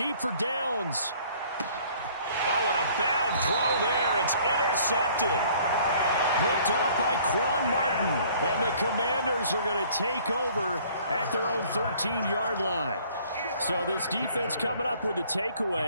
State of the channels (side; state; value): both; inverted; correlation -0.56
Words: for Downs. Oh, and a bad throw there. It's intercepted. Picked off by Quan Martin. And the Commanders are going to take over at their own 13-yard line. So this defense coming up with a